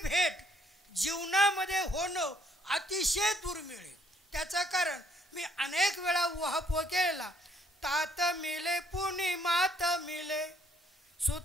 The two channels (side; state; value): both; normal; correlation 0.66